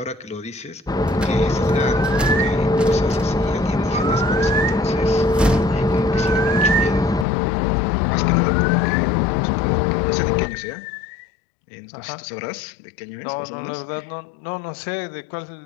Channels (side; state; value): right; drops out; at 7.2 s